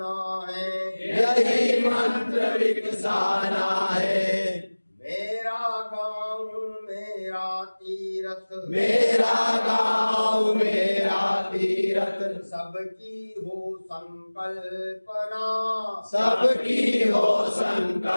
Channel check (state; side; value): inverted; both; correlation -1.00